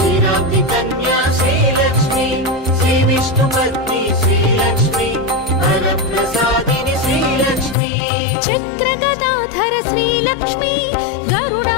కన్యా శ్రీలక్ష్మీ శ్రీ విష్ణుపత్ని శ్రీలక్ష్మీ వరప్రసాదిని శ్రీలక్ష్మీ చక్రగదాధర శ్రీలక్ష్మీ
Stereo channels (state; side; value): drops out; right; at 7.8 s